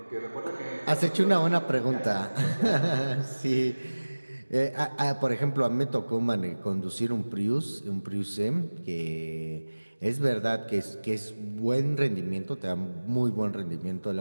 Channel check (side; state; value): both; inverted; correlation -1.00